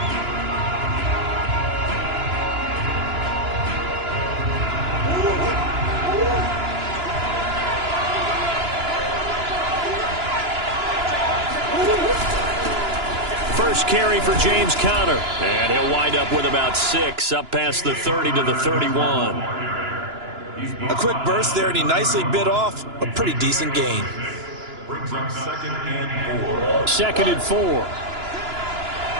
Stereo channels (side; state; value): left; late; 2.9 ms